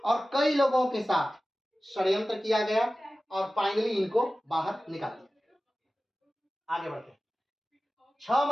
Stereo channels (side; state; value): both; normal; correlation 0.96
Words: और कई लोगों के साथ षड्यंत्र किया गया और फाइनली इनको बाहर निकाल दिया। आगे बढ़ते हैं। 6